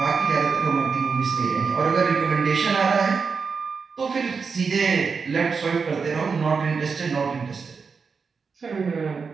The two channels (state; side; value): quieter; left; 5.3 dB